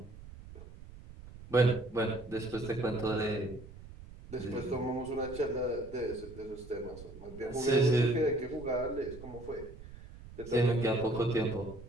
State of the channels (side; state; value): right; noise; rumble, 16 dB below the sound